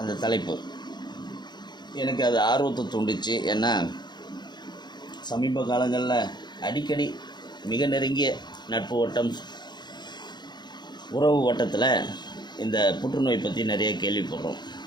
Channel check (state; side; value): late; right; 0.21 ms